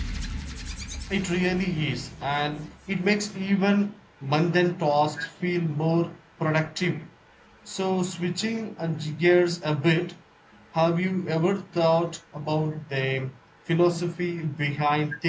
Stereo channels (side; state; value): both; identical; correlation 1.00